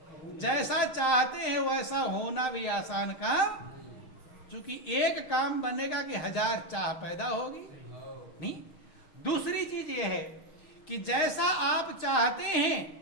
जैसा चाहते हैं वैसा होना भी आसान काम, क्योंकि एक काम बनेगा कि 1000 चाह पैदा होगी नहीं। दूसरी चीज यह है कि जैसा आप चाहते हैं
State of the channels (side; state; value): right; late; 6.5 ms